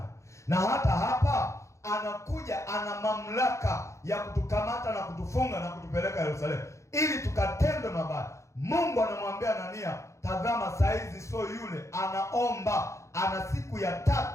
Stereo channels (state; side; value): late; right; 0.14 ms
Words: Na hata hapa anakuja, ana mamlaka ya kutukamata na kutufunga na kutupeleka Yerusalemu ili tukatendwe mabaya. Mungu anamwambia Anania, tazama, saizi sio yule, anaomba, ana siku ya